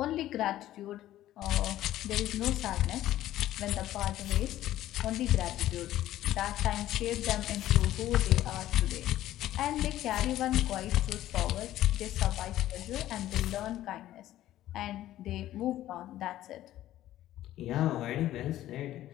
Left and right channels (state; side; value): quieter; right; 13.8 dB